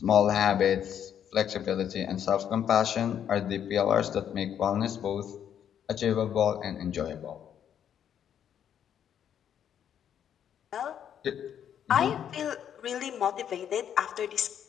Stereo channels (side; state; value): right; quieter; 9.2 dB